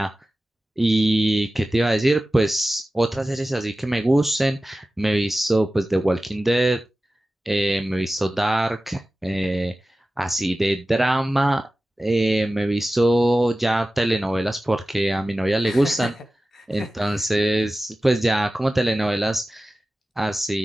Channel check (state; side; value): normal; both; correlation 0.95